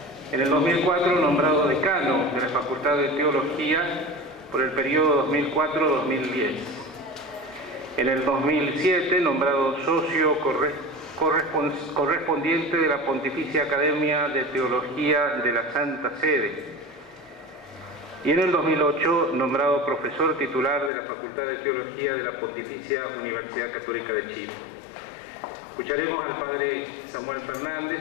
En el 2004, nombrado decano de la Facultad de Teología por el periodo 2004-2010. En el 2007, nombrado socio correspondiente de la Pontificia Academia de Teología de la Santa Sede. Y en el 2008, nombrado profesor titular de la Facultad de Teología de la Pontificia Universidad Católica de Chile. Escucharemos al padre Samuel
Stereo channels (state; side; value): drops out; right; at 20.9 s